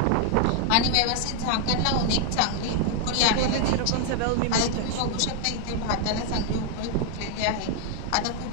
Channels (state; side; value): different; both; correlation 0.00